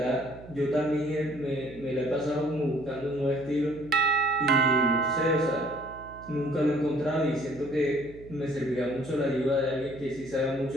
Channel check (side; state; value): right; noise; hum, 18 dB below the sound